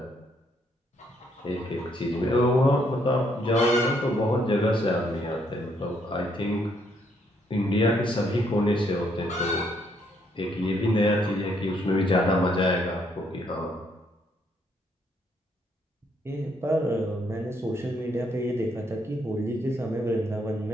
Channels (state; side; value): normal; both; correlation 0.72